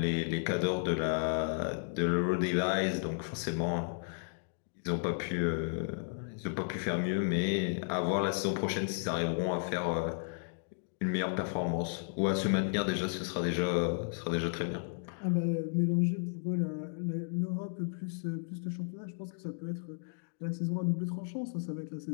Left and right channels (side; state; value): right; silent; digital silence